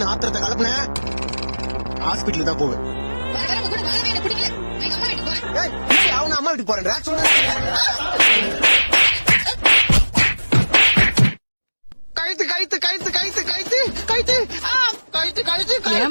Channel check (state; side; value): inverted; both; correlation -1.00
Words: ஆத்திரத்தை கலப்புன ஹாஸ்பிட்டல் தான் போவேன். அவன அம்மா வீட்டுக்கு போறேன். கழுத்து கழுத்து கழுத்து கழுத்து கழுத்து கழுத்து கழுத்து கழுத்து கைய